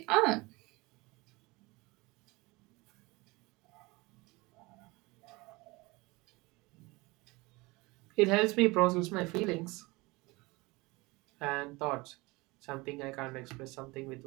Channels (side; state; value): left; quieter; 23.5 dB